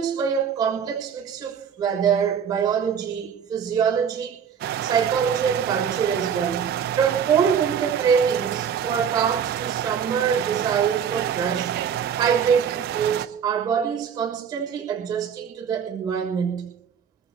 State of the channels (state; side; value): quieter; left; 7.6 dB